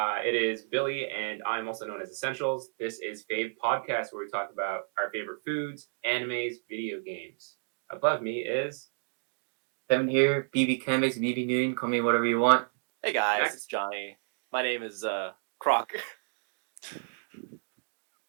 is Billy, and I'm also known as Essentials. This is Fave Podcast, where we talk about our favorite foods, animes, video games. Above me is Kevin here, BB Canvas, BB Noon, call me whatever you want. Hey guys, Max. it's Johnny. My name is Croc.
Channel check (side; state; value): left; silent; digital silence